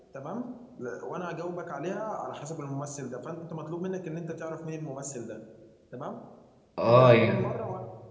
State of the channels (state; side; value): identical; both; correlation 1.00